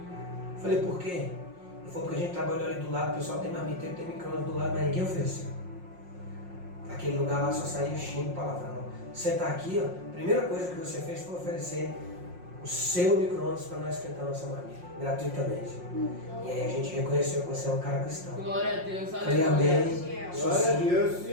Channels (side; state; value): left; late; 5.6 ms